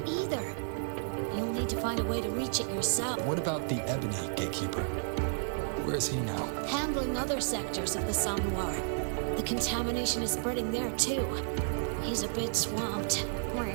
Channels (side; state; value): left; silent; digital silence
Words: either. You'll need to find a way to reach it yourself. What about the Ebony Gatekeeper? Where is he now? Handling other sectors of the Somnowhere. The contamination is spreading there too. He's a bit swamped.